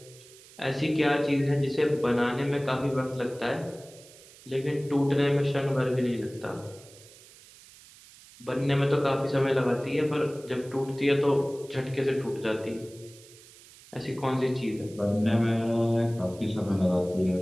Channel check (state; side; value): noise; right; hiss, 22 dB below the sound